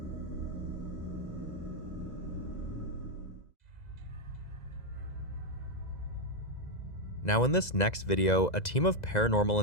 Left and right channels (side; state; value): right; late; 2.0 ms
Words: Now in this next video, a team of paranormal